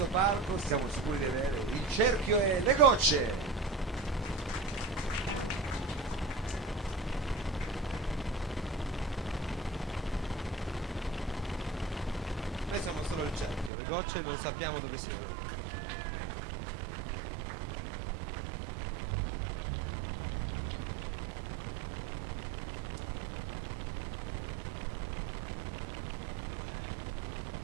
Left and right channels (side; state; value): left; drops out; at 13.7 s